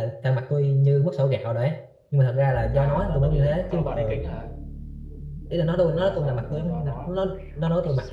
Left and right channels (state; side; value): identical; both; correlation 1.00